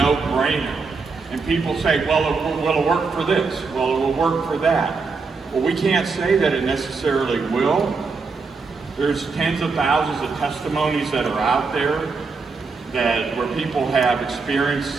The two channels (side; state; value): left; quieter; 4.5 dB